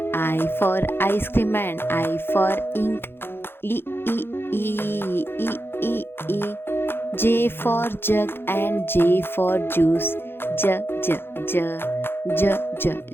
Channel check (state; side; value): late; right; 0.11 ms